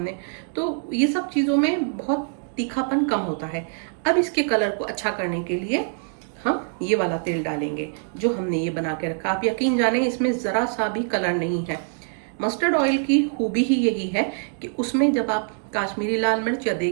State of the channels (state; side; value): silent; left; 61 dB below the other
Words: तो ये सब चीज़ों में बहुत तीखापन कम होता है। अब इसके कलर को अच्छा करने के लिए हम ये वाला तेल डालेंगे जो हमने ये बना के रखा। आप यकीन जाने इसमें ज़रा सा भी कलर नहीं है। मस्टर्ड ऑयल की खूबी ही यही है कि उसमें जब आप काश्मीरी लाल मिर्च या